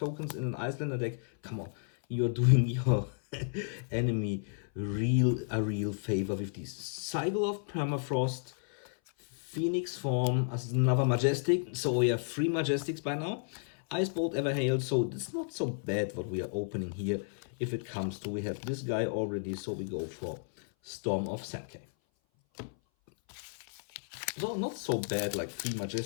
in an Icelander deck. Come on, you're doing your enemy a real favor with this. Cycle of Permafrost, Phoenix form as another Majestic. So we have 3 Majestics by now. Ice Bolt Everhail, so it's not so bad what we are opening here. If it comes to, we have this guy already, so we go for Storm of Sankey. So not so bad, like 3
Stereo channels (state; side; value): silent; right; 56 dB below the other